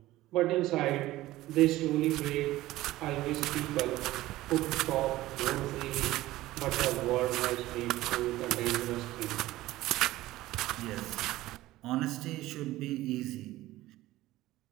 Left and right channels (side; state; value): left; quieter; 16.6 dB